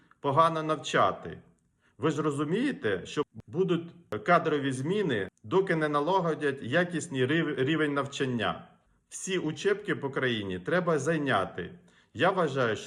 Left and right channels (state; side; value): identical; both; correlation 1.00